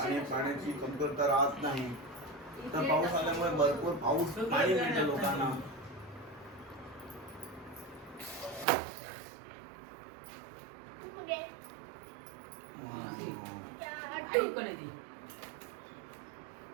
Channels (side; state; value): left; drops out; at 8.7 s